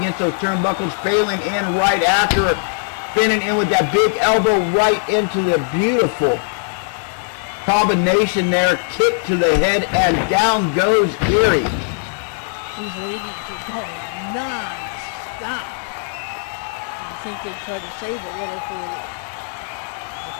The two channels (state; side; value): silent; right; 64 dB below the other